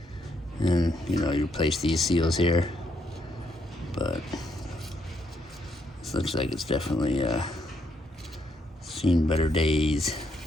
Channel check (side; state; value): both; normal; correlation 0.75